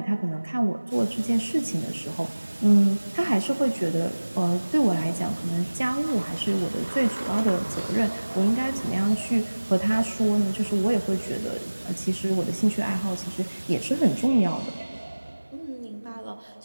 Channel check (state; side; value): inverted; both; correlation -1.00